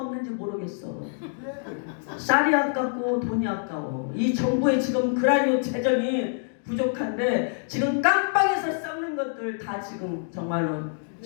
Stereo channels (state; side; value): silent; right; digital silence